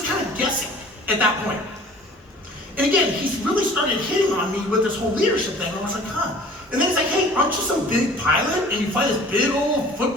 kind of guessing at that point. And again, he's really started hitting on me with this whole leadership thing. I was like, huh. And then he's like, hey, aren't you some big pilot and you fly this big old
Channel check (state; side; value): normal; both; correlation 0.48